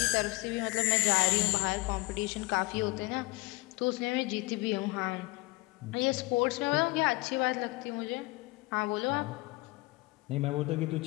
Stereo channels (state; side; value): quieter; right; 23.4 dB